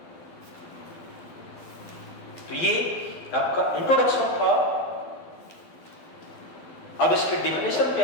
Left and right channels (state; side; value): late; right; 12 ms